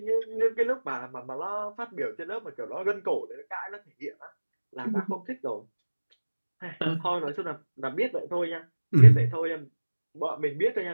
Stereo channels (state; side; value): inverted; both; correlation -1.00